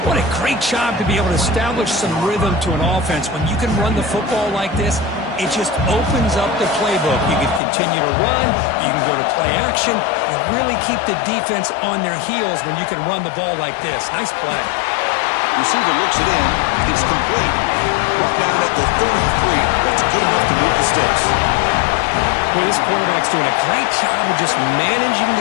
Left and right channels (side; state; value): right; drops out; at 7.6 s